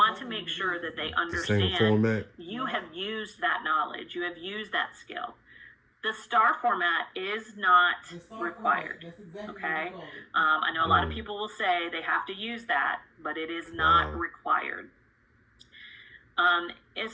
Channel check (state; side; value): identical; both; correlation 1.00